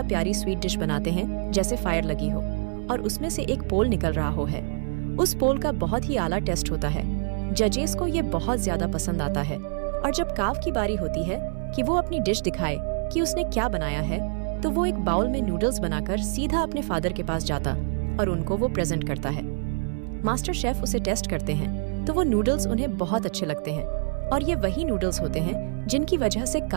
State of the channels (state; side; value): silent; left; digital silence